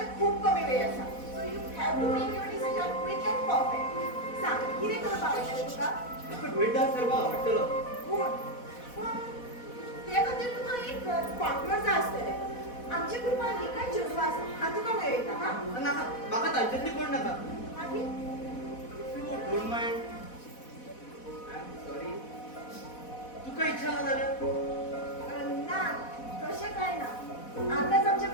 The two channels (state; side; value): late; right; 4.1 ms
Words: खूब कमी वेळ आसा. So you have to make your decision quick and perfect. सांग, कितें करपाक आवडटा तुका? म्हाका ड्युएट डान्स करपाक आवडटलो पूण ते खातीर तुका एक पार्टनर जाय आसतलें. आमच्या ग्रुपांनी कांय चेडवां आसा, हांव तुका मेळयता हा. नाका म्हाका तांच्यातली कोण नाका मागीर you don't mind I am sorry तुका इच्छा ना जाल्यार ना, तशें कांय ना. आतांच आमच्या